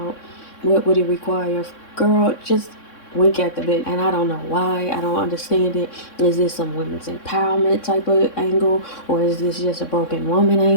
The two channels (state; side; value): late; right; 3.6 ms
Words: what would it require, girl, just wink at the bit. And I don't know why. I don't understand it. Is this some women's empowerment type of angle, or is this just a broken woman